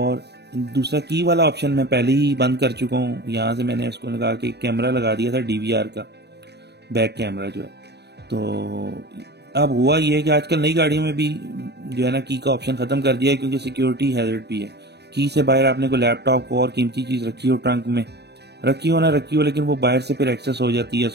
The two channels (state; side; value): late; left; 0.49 ms